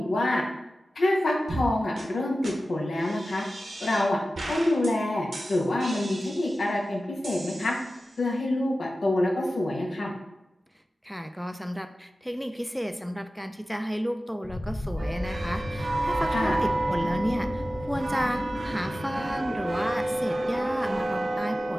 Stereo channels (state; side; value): normal; both; correlation 0.95